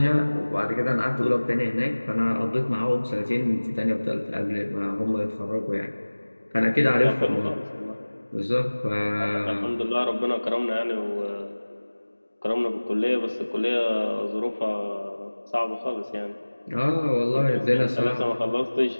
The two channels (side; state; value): both; inverted; correlation -1.00